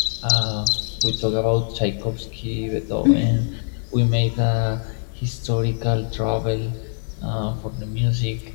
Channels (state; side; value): silent; right; digital silence